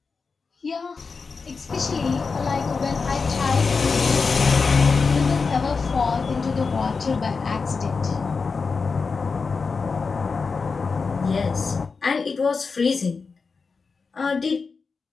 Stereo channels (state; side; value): quieter; right; 4.8 dB